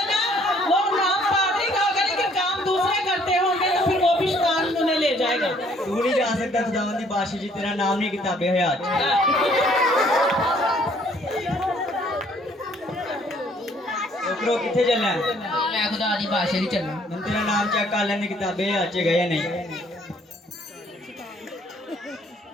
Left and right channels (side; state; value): both; normal; correlation 0.62